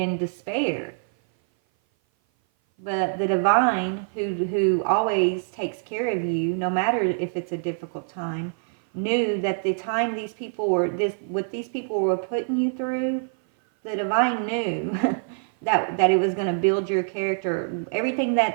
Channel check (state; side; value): silent; left; 57 dB below the other